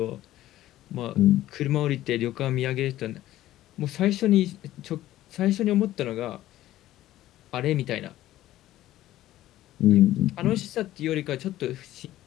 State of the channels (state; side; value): quieter; right; 14.4 dB